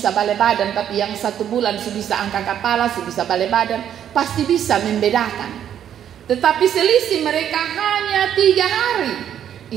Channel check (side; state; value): left; quieter; 9.8 dB